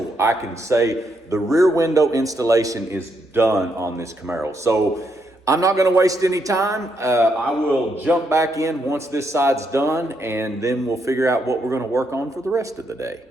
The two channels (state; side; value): normal; both; correlation 0.78